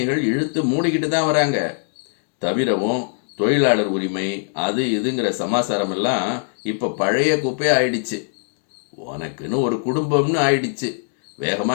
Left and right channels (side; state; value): right; silent; digital silence